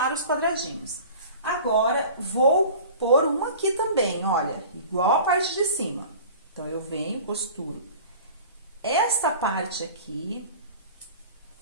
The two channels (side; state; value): both; inverted; correlation -0.42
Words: os quadradinhos. Agora, vou pôr um aqui também, olha, igual a parte de cima. Então, eu venho, costuro esta parte aqui,